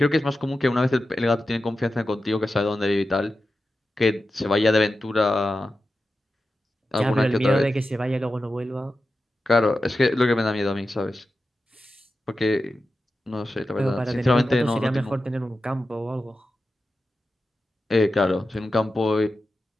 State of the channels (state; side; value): normal; both; correlation 0.92